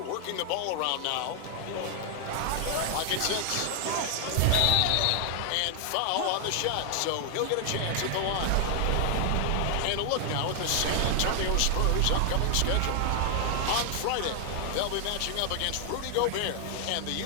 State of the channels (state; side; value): different; both; correlation 0.00